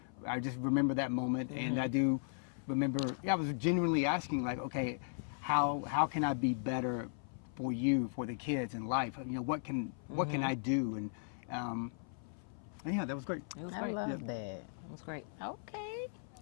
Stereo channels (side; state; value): right; silent; 53 dB below the other